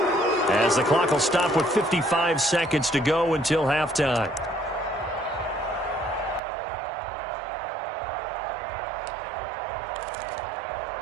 as the clock will stop with 55 seconds to go until halftime.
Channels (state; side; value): drops out; left; at 6.4 s